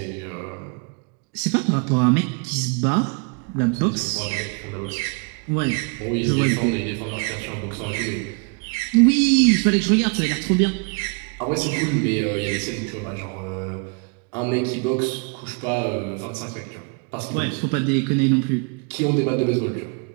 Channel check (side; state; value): left; quieter; 33.3 dB